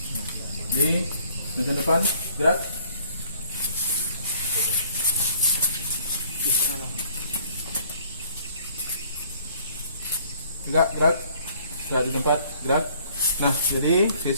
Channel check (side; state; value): both; inverted; correlation -0.59